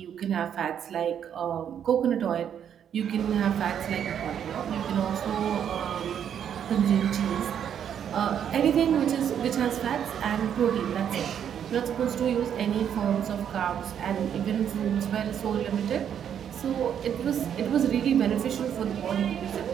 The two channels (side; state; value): left; quieter; 8.8 dB